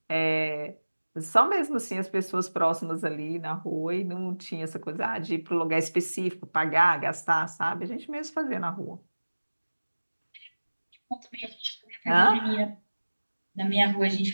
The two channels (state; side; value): inverted; both; correlation -1.00